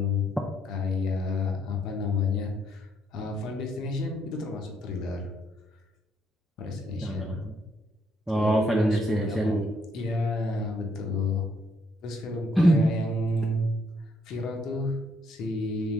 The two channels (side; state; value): both; normal; correlation 0.72